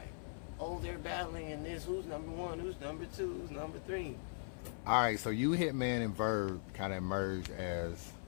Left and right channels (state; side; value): silent; right; 51 dB below the other